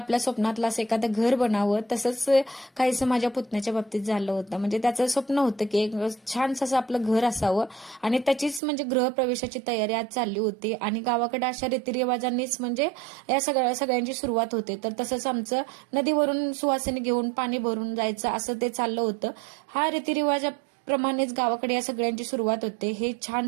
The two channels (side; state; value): left; drops out; at 8.6 s